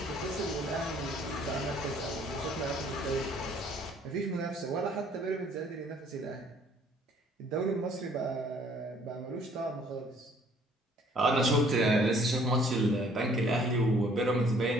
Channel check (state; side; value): normal; both; correlation 0.59